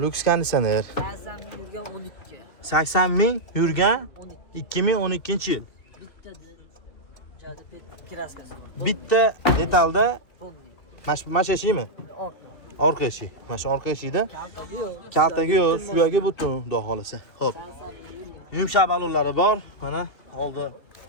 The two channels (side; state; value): right; late; 3.1 ms